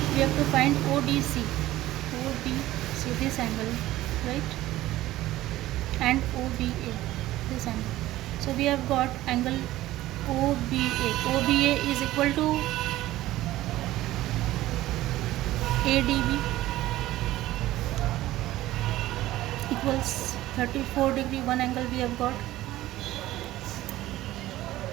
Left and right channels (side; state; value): left; quieter; 15.8 dB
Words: we have to find ODC, this angle, right, and OBA, this angle. So we have got angle OBA is equal to ADB equals 34 degree. One angle we have got.